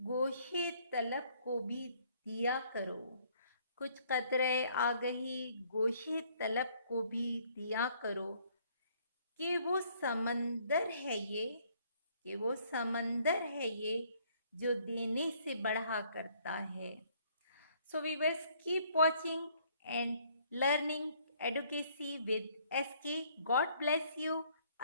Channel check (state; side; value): inverted; both; correlation -0.63